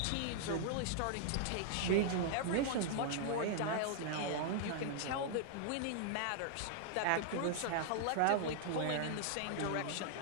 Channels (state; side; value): different; both; correlation -0.01